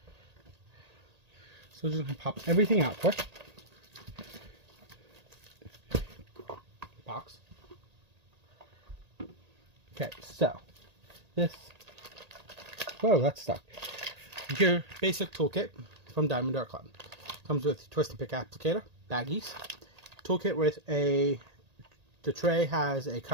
So just gonna pop everything out quick. Box. Okay, so this. Whoa, that's stuck. Your basic toolkit from Diamond Art Club. Comes with twist and pick applicator, baggies, toolkit with the tray has a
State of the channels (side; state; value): left; late; 1.8 ms